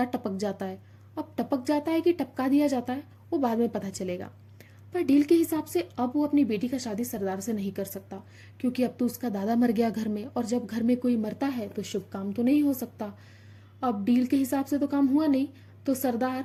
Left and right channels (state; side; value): identical; both; correlation 1.00